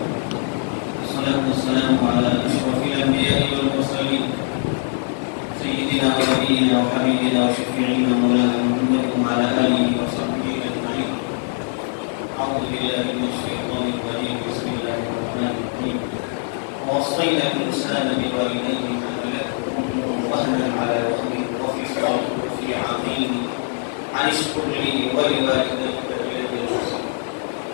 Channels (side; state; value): right; silent; 58 dB below the other